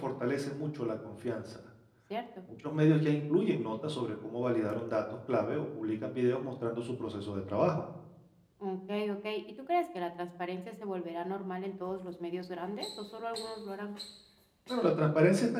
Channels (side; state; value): both; identical; correlation 1.00